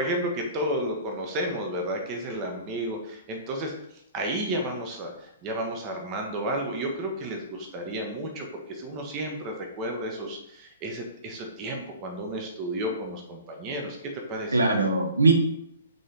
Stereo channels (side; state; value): both; inverted; correlation -0.40